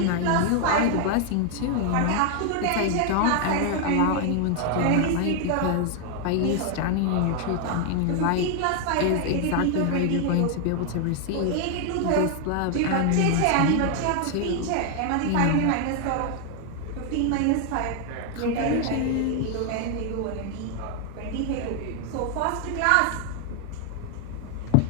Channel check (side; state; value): both; different; correlation 0.00